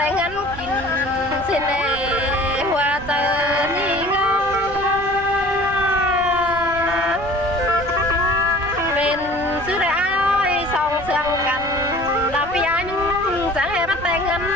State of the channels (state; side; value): noise; right; rumble, 14 dB below the sound